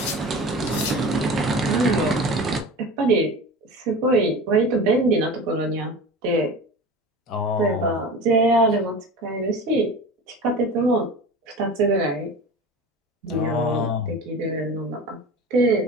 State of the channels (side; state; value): both; normal; correlation 0.33